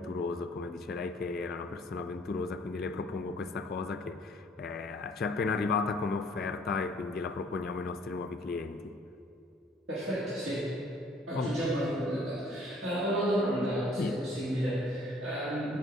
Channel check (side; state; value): both; normal; correlation 0.58